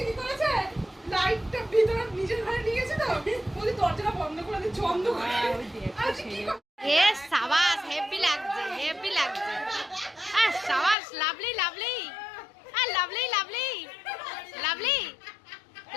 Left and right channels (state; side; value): drops out; right; at 11.0 s